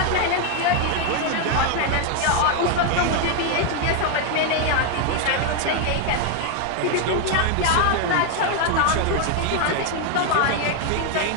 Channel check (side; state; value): both; different; correlation 0.00